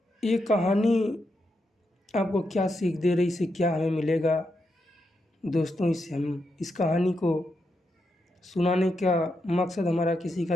ये कहानी आपको क्या सीख दे रही, इससे क्या हमें मिलेगा दोस्तों? इससे हम इस कहानी को सुनाने का मकसद हमारा किसी का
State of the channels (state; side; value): normal; both; correlation 0.84